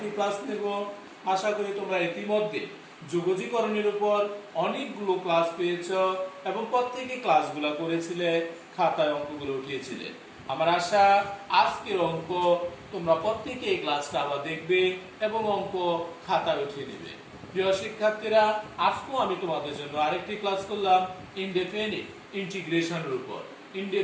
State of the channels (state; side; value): identical; both; correlation 1.00